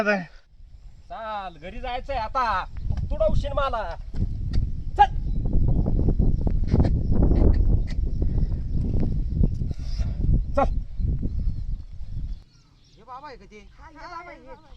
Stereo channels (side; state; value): both; identical; correlation 1.00